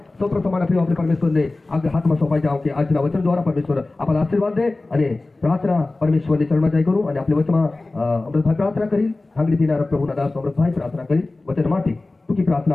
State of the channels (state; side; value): quieter; right; 3.1 dB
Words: सौ प्रथम माना प्रिय आपले परमेश्वर ने आगे हाथ में सोपाई जाओ कि આજના वचन द्वारा परमेश्वर आपला आशीर्वाद दे અને प्रार्थना परमेश्वर ने चरण में जाई करू અને आपले वचन अमृतभाई प्रार्थना करी हांगली दिनार प्रभुना दास अमृतभाई प्रार्थना करी वचन माटे टूकी प्रार्थना